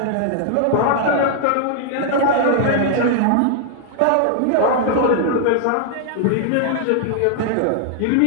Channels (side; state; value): both; different; correlation -0.01